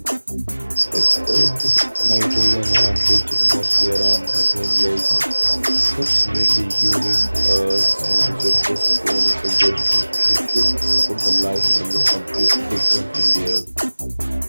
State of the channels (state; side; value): inverted; both; correlation -1.00